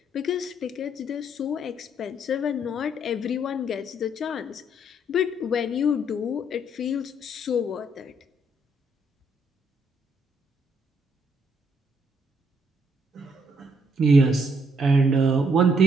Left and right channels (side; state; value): both; normal; correlation 0.70